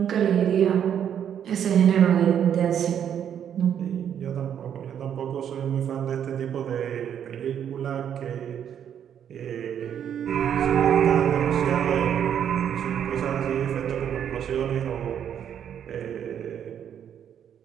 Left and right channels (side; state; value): left; quieter; 9.1 dB